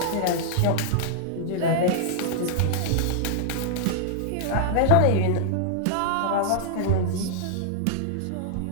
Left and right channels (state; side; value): different; both; correlation -0.01